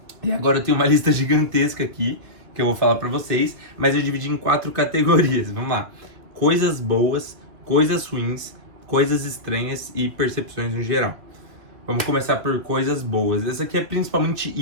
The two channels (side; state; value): left; late; 2.3 ms